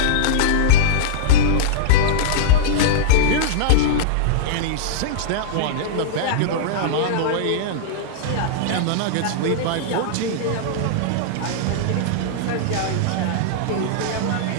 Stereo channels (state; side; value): different; both; correlation -0.02